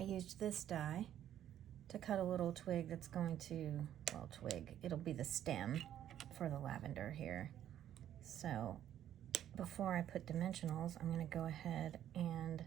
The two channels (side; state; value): left; quieter; 11.0 dB